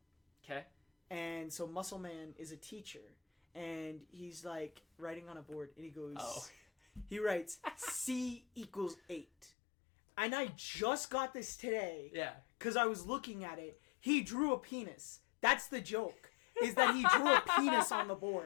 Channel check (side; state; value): right; drops out; at 9.5 s